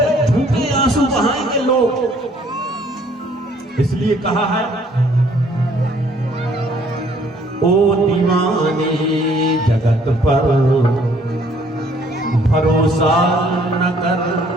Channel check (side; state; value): both; normal; correlation 0.61